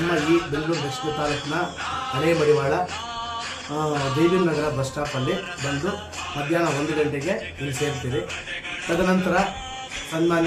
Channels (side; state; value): both; identical; correlation 1.00